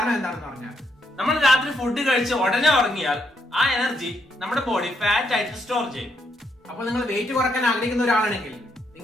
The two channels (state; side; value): normal; both; correlation 0.77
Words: എന്താണെന്ന് പറഞ്ഞാൽ നമ്മൾ രാത്രി ഫുഡ് കഴിച്ച് ഉടനെ ഉറങ്ങിയാൽ ആ എനർജി നമ്മുടെ ബോഡി ഫാറ്റ് ആയിട്ട് സ്റ്റോർ ചെയ്യും. അപ്പോൾ നിങ്ങൾ വെയിറ്റ് കുറയ്ക്കാൻ ആഗ്രഹിക്കുന്ന ഒരാളാണെങ്കിൽ